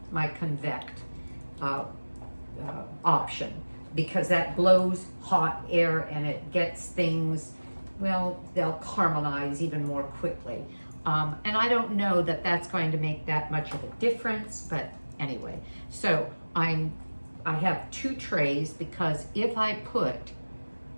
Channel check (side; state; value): both; inverted; correlation -1.00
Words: option, because that blows hot air and it gets things, well, they'll caramelize even more quickly. And I don't know that that's going to make that much of a difference, but anyway. So I have 2 trays, because if I put